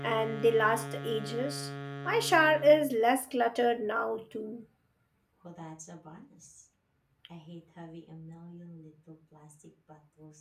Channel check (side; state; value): both; identical; correlation 1.00